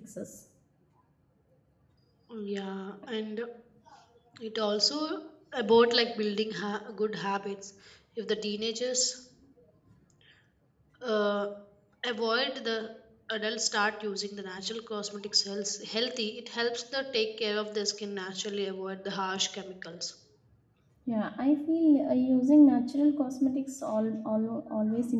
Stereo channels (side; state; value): both; identical; correlation 1.00